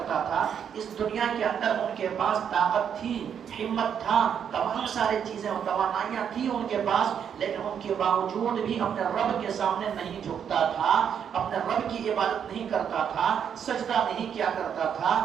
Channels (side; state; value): left; quieter; 8.1 dB